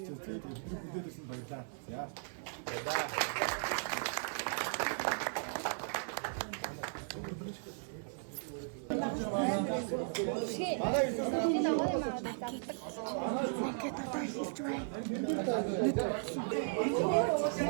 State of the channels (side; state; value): left; silent; digital silence